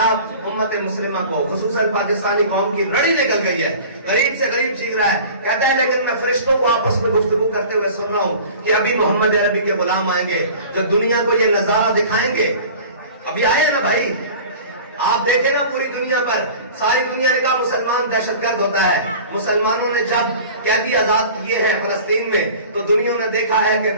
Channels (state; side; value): inverted; both; correlation -0.41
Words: امت مسلمہ کو خصوصاً پاکستانی قوم کی رڑی نکل گئی ہے, غریب سے غریب چیخ رہا ہے. کہتا ہے لیکن میں فرشتوں کو آپس میں گفتگو کرتے ہوئے سن رہا ہوں کہ ابھی محمد عربی کے غلام آئیں گے جو دنیا کو یہ نظارہ دکھائیں گے. ابھی آئے نا بھائی, آپ دیکھیں نا پوری دنیا پر, ساری دنیا نے کہا مسلمان دہشت گرد ہوتا ہے. مسلمانوں نے جب قیدی آزاد کیے ہیں فلسطین میں تو دنیا نے دیکھا ہے کہ